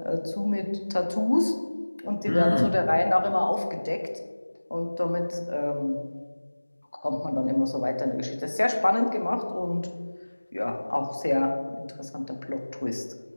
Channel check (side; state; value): both; inverted; correlation -1.00